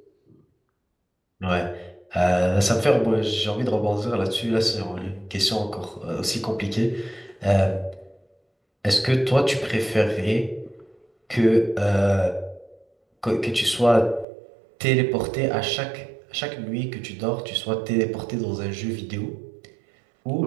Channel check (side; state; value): left; drops out; at 14.2 s